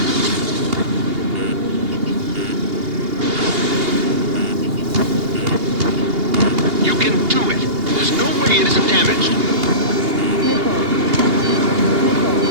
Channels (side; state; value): left; late; 2.8 ms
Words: You can do it. There's no way it isn't damaged.